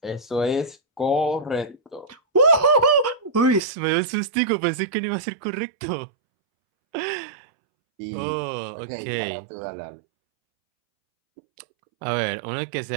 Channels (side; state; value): left; drops out; at 3.6 s